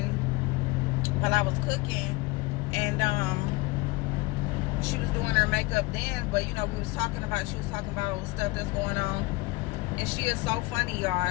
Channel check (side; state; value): right; quieter; 22.6 dB